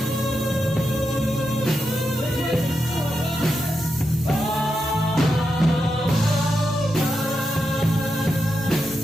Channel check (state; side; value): normal; both; correlation 0.86